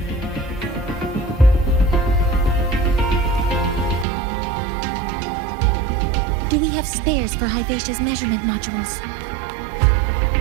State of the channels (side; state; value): left; drops out; at 4.0 s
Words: Do we have spares for Hivacia's measurement modules?